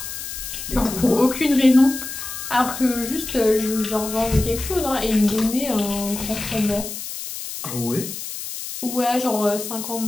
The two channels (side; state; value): left; noise; hiss, 8 dB below the sound